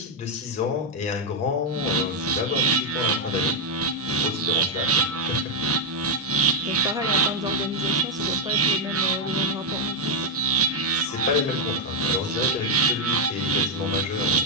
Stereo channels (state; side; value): normal; both; correlation 0.00